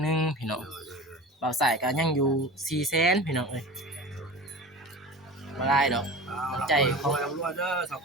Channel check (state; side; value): normal; both; correlation 0.34